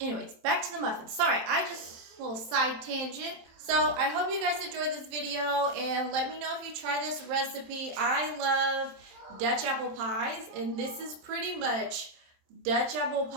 back to the muffins. Sorry, I just, little side tangent. So I hope you guys enjoyed this video, and let me know if you try this recipe. I love Dutch apple pies, and this is pretty much Dutch apple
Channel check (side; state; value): left; late; 27 ms